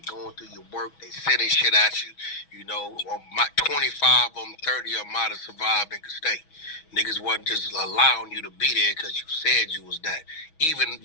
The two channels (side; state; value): right; late; 6.2 ms